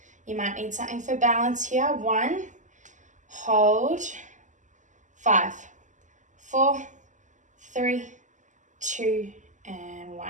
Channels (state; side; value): late; left; 0.36 ms